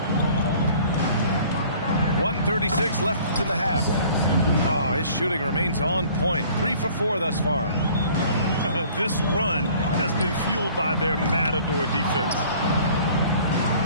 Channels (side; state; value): both; inverted; correlation -0.52